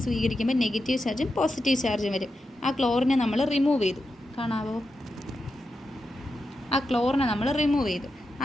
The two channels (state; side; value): normal; both; correlation 0.88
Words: സ്വീകരിക്കുമ്പോൾ നെഗറ്റീവ് ചാർജും പോസിറ്റീവ് ചാർജും വരും. ആ ക്ലോറിനെ നമ്മൾ റിമൂവ് ചെയ്തു, കാണാവോ? ആ ക്ലോറിനെ നമ്മൾ റിമൂവ് ചെയ്തു.